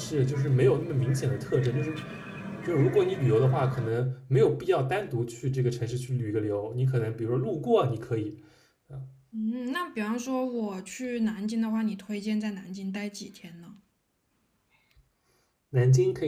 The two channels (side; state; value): both; identical; correlation 1.00